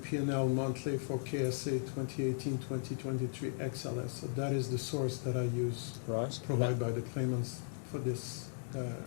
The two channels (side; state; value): right; silent; digital silence